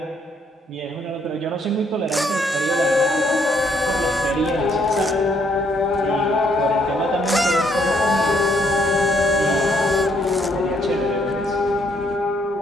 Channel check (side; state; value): both; normal; correlation 0.70